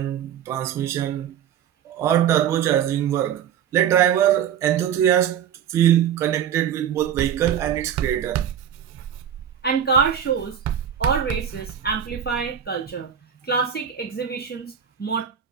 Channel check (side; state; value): left; quieter; 9.0 dB